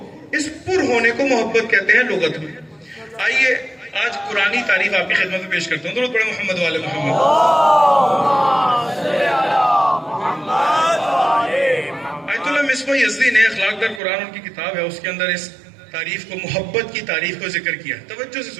اس پر ہونے کو محبت کہتے ہیں لغت میں. آئیے آج قرآنی تعریف آپ کی خدمت میں پیش کرتا ہوں. درود پڑھیں محمد والے محمد. آیت اللہ مصباح یزدی نے اخلاق در قرآن ان کی کتاب ہے, اس کے اندر اس تعریف کو, محبت کی تعریف کو ذکر کیا. توجہ سے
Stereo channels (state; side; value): drops out; left; at 14.0 s